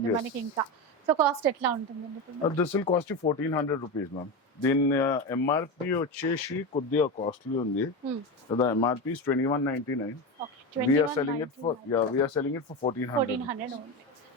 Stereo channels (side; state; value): both; normal; correlation 0.19